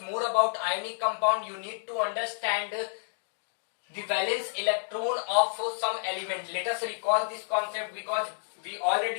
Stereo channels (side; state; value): right; silent; digital silence